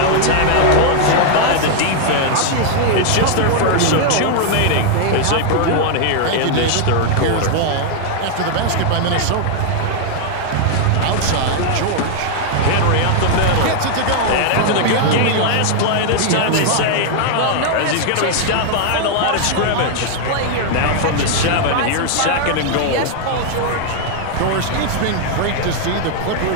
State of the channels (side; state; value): both; different; correlation 0.00